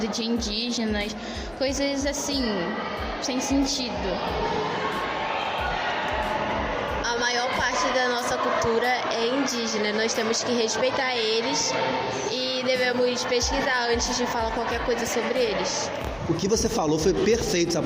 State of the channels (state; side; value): identical; both; correlation 1.00